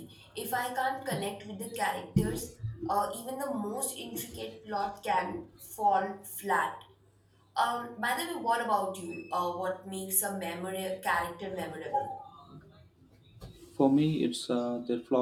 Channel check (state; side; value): identical; both; correlation 1.00